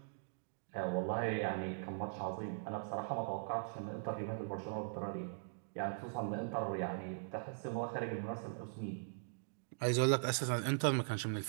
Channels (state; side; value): silent; left; digital silence